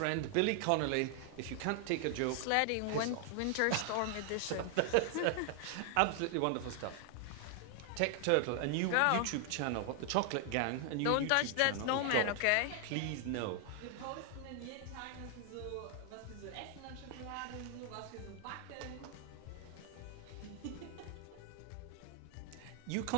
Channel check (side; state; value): both; different; correlation 0.00